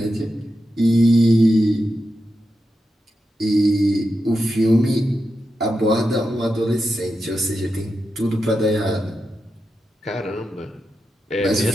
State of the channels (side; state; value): both; normal; correlation 0.89